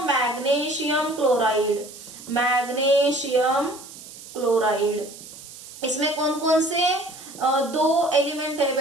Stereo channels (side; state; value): right; noise; hiss, 16 dB below the sound